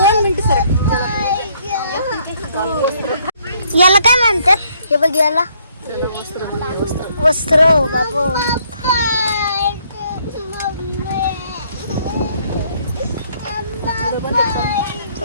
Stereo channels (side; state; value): both; inverted; correlation -0.66